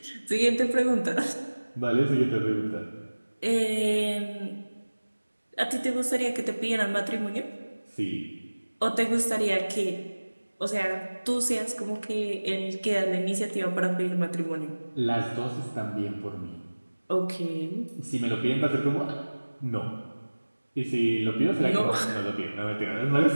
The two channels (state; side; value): inverted; both; correlation -1.00